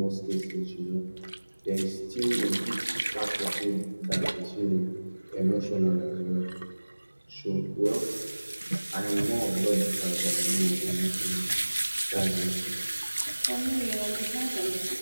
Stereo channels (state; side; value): inverted; both; correlation -1.00